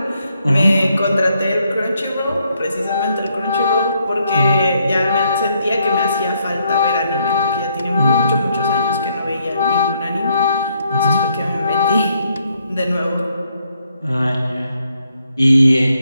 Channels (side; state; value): both; inverted; correlation -0.74